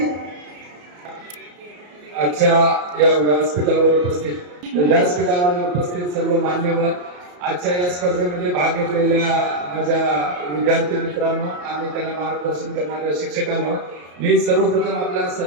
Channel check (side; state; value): left; late; 34 ms